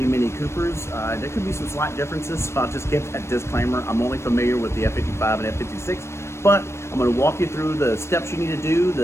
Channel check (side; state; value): right; late; 0.13 ms